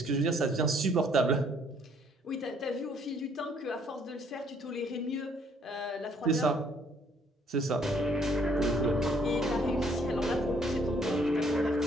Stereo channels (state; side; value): normal; both; correlation 0.64